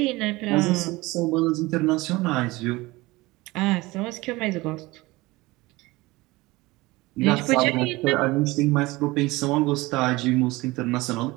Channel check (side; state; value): left; quieter; 21.1 dB